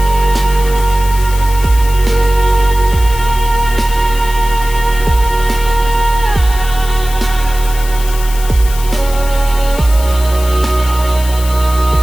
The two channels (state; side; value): noise; left; hiss, 13 dB below the sound